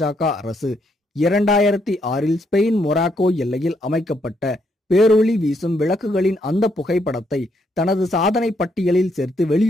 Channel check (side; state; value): both; normal; correlation 0.75